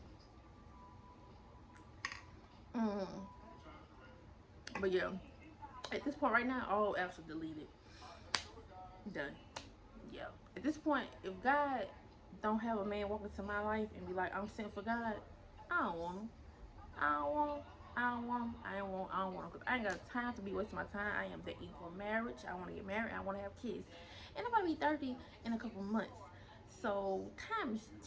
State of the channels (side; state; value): both; identical; correlation 1.00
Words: Mm. But yeah, at this point right now, all apps are deleted. Done. Yeah. At this point, if God don't have a man walk into my life and be like, I'm sent for God, I don't want him. I don't want him. I don't want him. I don't want him. Cause I ain't got time to be wasting my time. I am dating for marriage. I want to get married. I want to have kids. And I'm about to be 30 in a couple months. So time is